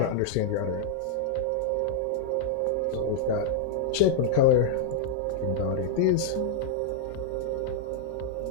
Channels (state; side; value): different; both; correlation -0.02